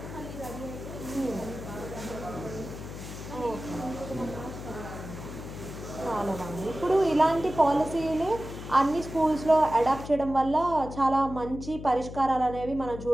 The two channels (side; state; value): left; noise; hum, 10 dB below the sound